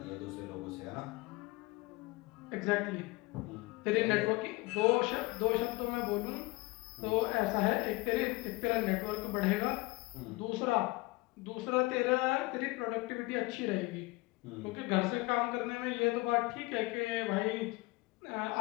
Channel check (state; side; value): quieter; right; 22.8 dB